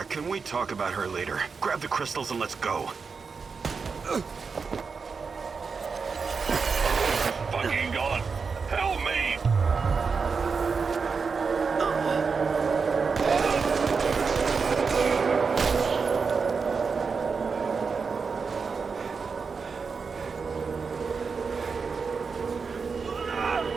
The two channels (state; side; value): quieter; left; 5.2 dB